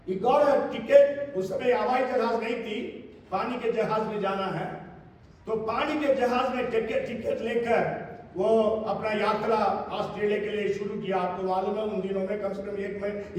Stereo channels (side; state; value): both; identical; correlation 1.00